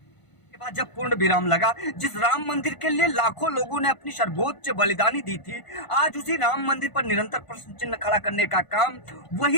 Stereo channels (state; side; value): late; right; 1.0 ms